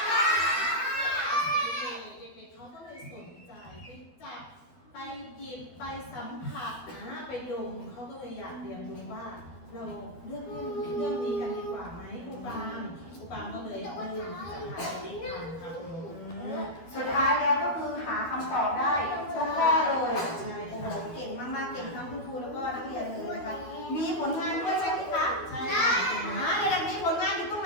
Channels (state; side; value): late; right; 12 ms